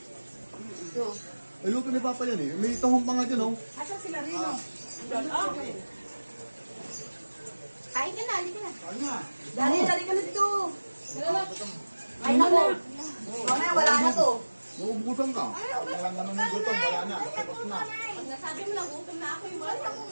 No. Ay, luto ni Papa yan eh. May tahong pa nga dyan oh. Asan sila Rino? Okay. Kain ka na, halika na. Dali ka na dito. Ay, naku. Mamaya, wala na to. Maubusan ka. Wala naman yung gutom, wala na. Tapos na. Pag nasabi mo lang, gutom na ako yung wala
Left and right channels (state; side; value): inverted; both; correlation -1.00